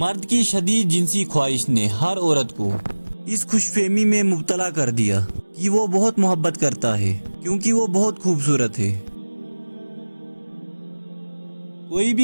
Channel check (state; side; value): inverted; both; correlation -1.00